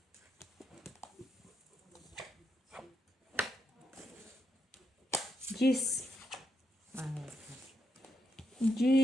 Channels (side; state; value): both; normal; correlation 0.82